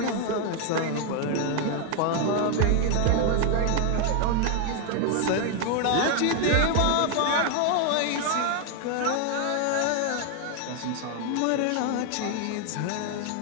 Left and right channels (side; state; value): both; different; correlation 0.00